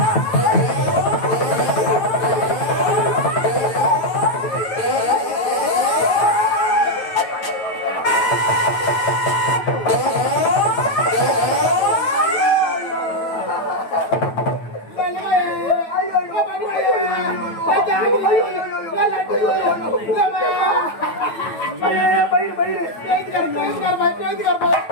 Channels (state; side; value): late; right; 9.0 ms